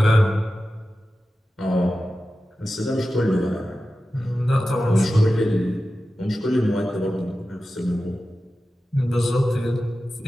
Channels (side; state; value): both; normal; correlation 0.93